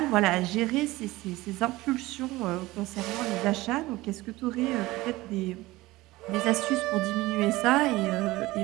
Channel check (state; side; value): quieter; left; 19.1 dB